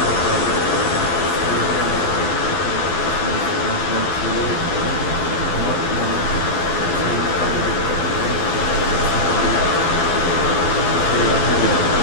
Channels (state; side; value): late; right; 11 ms